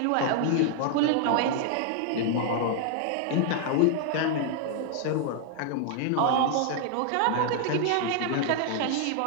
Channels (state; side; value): different; both; correlation 0.00